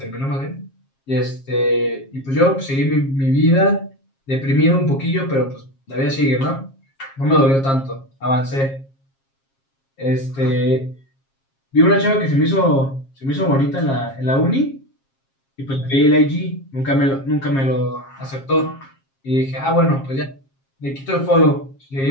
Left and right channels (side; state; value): right; late; 7.4 ms